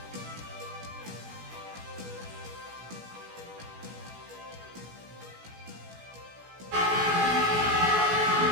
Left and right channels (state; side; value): late; left; 16 ms